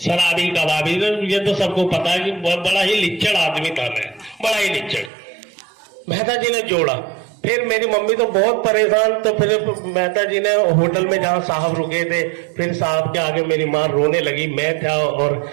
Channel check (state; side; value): drops out; left; at 5.1 s